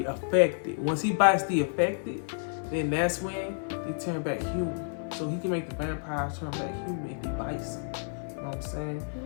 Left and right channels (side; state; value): right; silent; 58 dB below the other